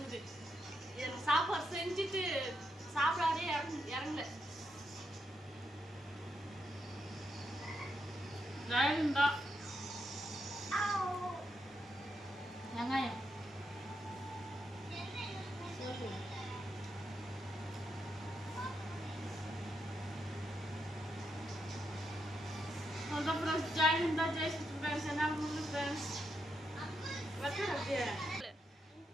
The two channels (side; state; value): both; normal; correlation 0.82